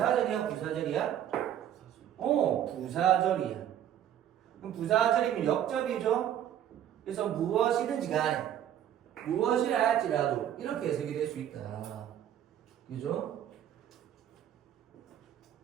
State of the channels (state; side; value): quieter; left; 10.7 dB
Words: 부사절이야? 부사절이야. 그럼 부사절이면 역접이죠? 그래서 무엇이든지 간에 무엇이라 할지라도 이렇게 해석이 될 수 있다. 그죠?